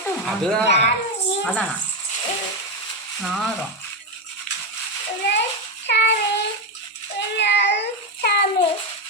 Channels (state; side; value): normal; both; correlation 0.10